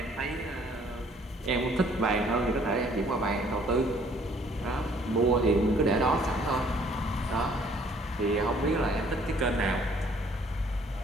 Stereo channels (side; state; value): both; normal; correlation 0.60